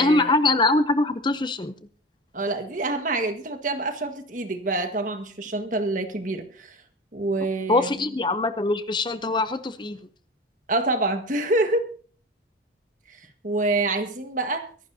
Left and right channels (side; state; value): both; normal; correlation 0.30